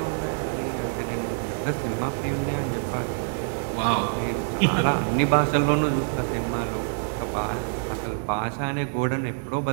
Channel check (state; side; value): silent; left; digital silence